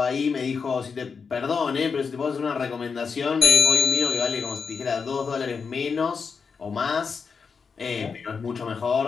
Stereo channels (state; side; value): quieter; right; 5.5 dB